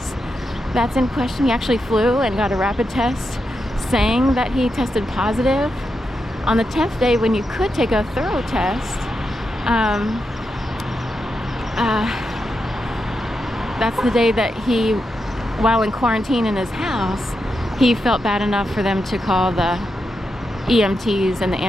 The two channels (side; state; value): both; normal; correlation 0.86